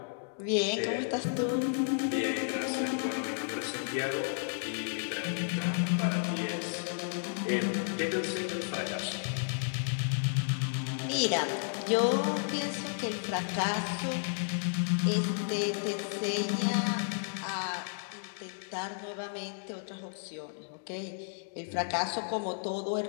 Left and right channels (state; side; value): silent; right; digital silence